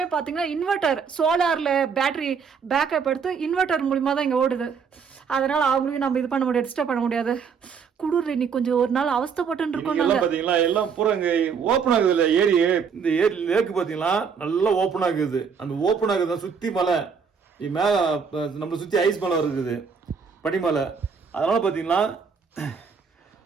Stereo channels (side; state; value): left; quieter; 6.2 dB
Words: பார்த்தீங்கன்னா இன்வெர்டர், சோலாரில் பேட்டரி பேக்கப் எடுத்து இன்வெர்டர் மூலிமா தான் இங்கே ஓடுது. அதனால அவங்களையும் நம்ம இது பண்ண முடியாது, டிஸ்டர்ப் பண்ண முடியாது. குளிர் இன்னைக்கு கொஞ்சம் ஒரு நாள் அவஸ்தைப்பட்டு இருக்கோம். பாத்தீங்களா எல்லாம் பூரா இங்க ஓப்பன் ஆகுது இல்ல ஏரி. இந்த ஏரி லேக்கு பாத்தீங்களா நல்லா ஓப்பன் ஆகுது. அந்த ஓப்பன் ஆகுது சுத்தி மலை மேல நம்மளை சுத்தி ஐஸ் மலை இருக்குது, பனிமலை. அதனால பாத்தீங்கன்னா